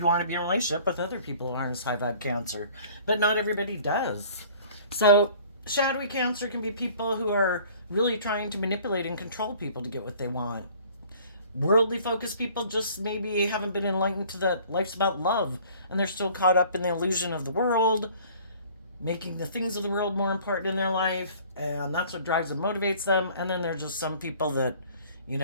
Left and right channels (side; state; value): both; inverted; correlation -0.51